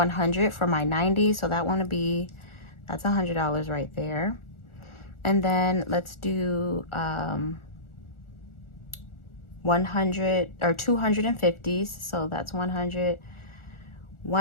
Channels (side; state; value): right; late; 1.4 ms